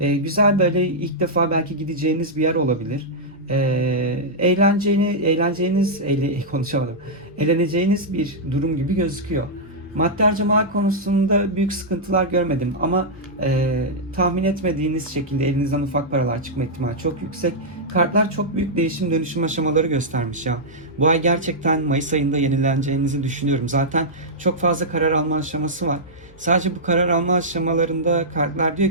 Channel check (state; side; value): normal; both; correlation -0.08